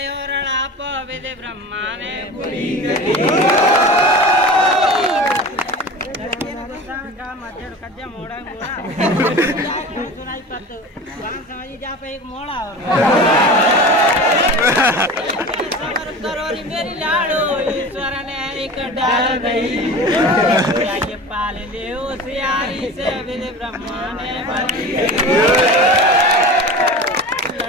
पविले ब्रह्मा ने बुरी करी। लड़के ने गुस्सा का मजड़ खजा मोड़ा मोड़ा सुनाई पत्तो गान समझी जा पे एक मोड़ा और सबर करो री मेरी लाडो, ईश्वर ने एक डाल गई। ये पाल ले उस यारी से विधि ब्रह्मा ने बनी।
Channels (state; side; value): normal; both; correlation 0.34